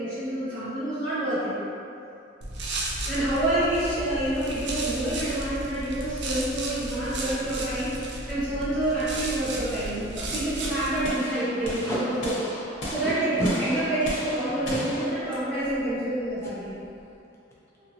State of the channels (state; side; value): normal; both; correlation 0.38